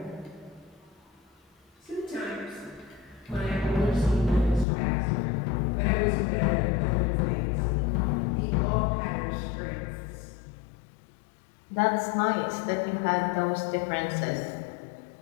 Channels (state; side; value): drops out; right; at 4.7 s